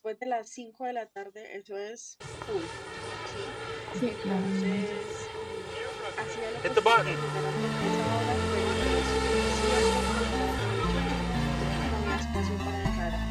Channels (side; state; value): both; identical; correlation 1.00